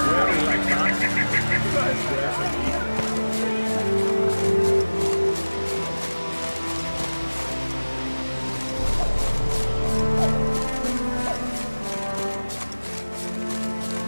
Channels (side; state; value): both; inverted; correlation -1.00